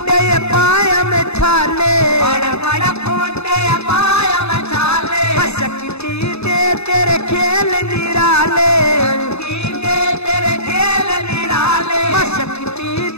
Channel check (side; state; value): right; late; 0.80 ms